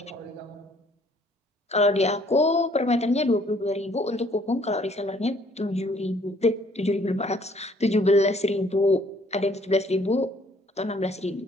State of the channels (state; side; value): normal; both; correlation 0.61